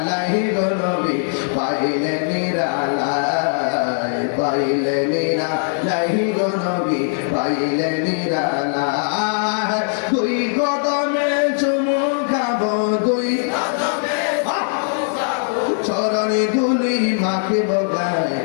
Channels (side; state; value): right; silent; digital silence